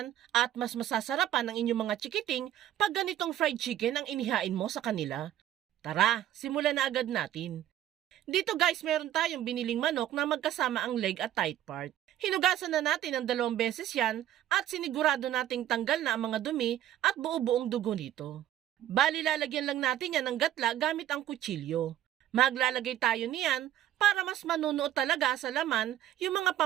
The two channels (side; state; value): left; quieter; 12.1 dB